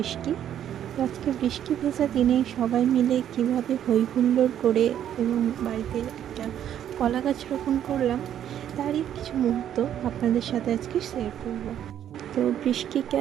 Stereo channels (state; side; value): quieter; left; 10.3 dB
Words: আজকে বৃষ্টি ভেজা দিনে সবাই মিলে কীভাবে হই হুল্লোড় করে এবং বাড়িতে একটা কলা গাছ রোপণ করলাম, তারই কিছু মুহূর্ত আপনাদের সাথে আজকে শেয়ার করব। তো